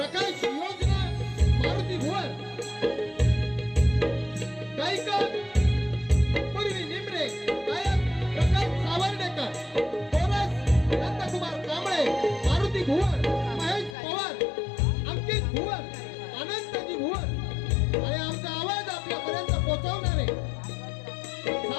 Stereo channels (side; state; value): right; drops out; at 14.0 s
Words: योजना मारुती भुवर, गायक पूर्वी निमरे, गायक प्रकाश सावर्डेकर, कोरस नंदकुमार कांबळे, मारुती भुवर, महेश पवार, अंकित भुवर, आनंदजी भुवर आणि आमचा आवाज आपल्यापर्यंत पोहोचवणारे